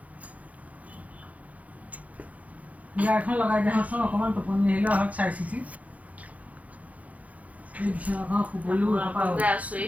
বিয়া এখন লগাই দিয়াচোন অকণমান টোপনি আহিলে হওক চাই চিতি এই বিচনাখন শুবলৈও আপোনালোকে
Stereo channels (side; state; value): left; late; 0.071 ms